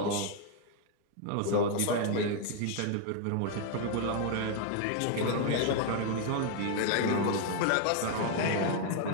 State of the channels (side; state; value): both; different; correlation 0.00